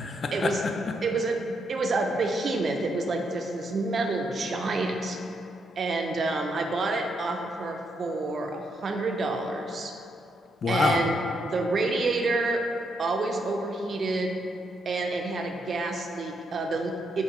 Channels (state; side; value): normal; both; correlation 0.78